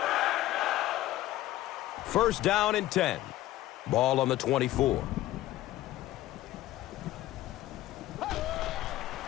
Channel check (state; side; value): quieter; right; 15.2 dB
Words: First down and 10. Ball on the 24.